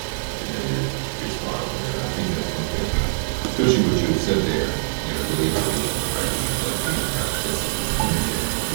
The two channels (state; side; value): silent; left; digital silence